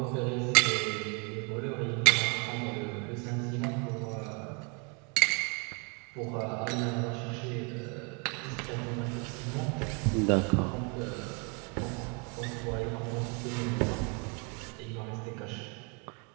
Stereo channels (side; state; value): left; quieter; 32.4 dB